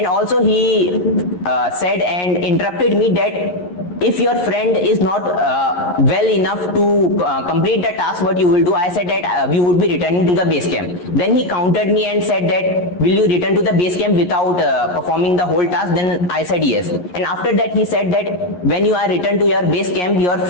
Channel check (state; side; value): late; right; 11 ms